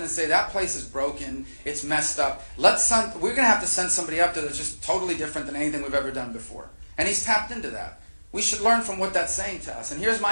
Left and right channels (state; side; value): inverted; both; correlation -1.00